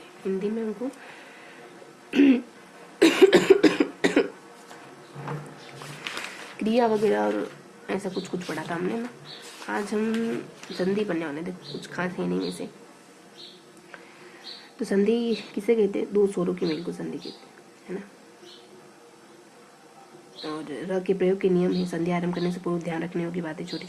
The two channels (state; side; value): identical; both; correlation 1.00